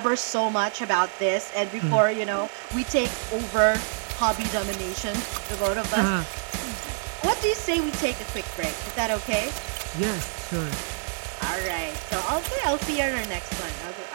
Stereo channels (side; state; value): left; silent; digital silence